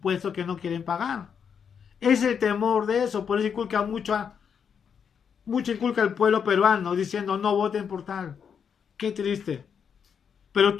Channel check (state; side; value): quieter; right; 7.1 dB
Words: que no quieren pagar. Es el temor de eso, por eso inculca mucho al pueblo peruano diciendo no voten por tal. Qué triste. Pero